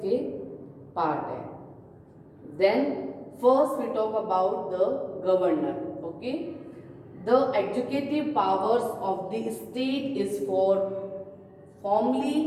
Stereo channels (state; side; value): identical; both; correlation 1.00